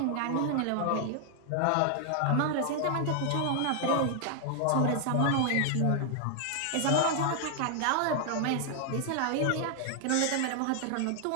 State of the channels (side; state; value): both; different; correlation 0.00